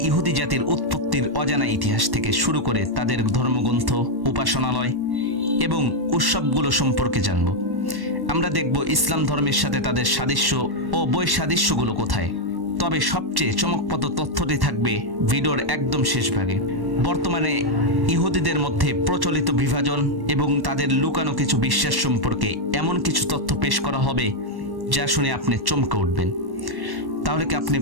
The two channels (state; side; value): late; left; 1.1 ms